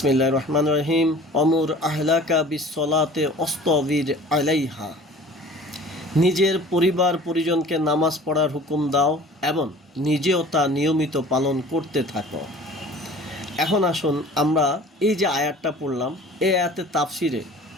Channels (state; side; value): normal; both; correlation 0.45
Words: রহমানির রহিম, অমুর আহলাকা বিসসালাতে ওয়াসতাবির আলাইহা। নিজের পরিবার পরিজনকে নামাজ পড়ার হুকুম দাও এবং নিজেও তা নিয়মিত পালন করতে থাকো। এখন আসুন আমরা এই যে আয়াতটা পড়লাম, এই আয়াতের তাফসিরে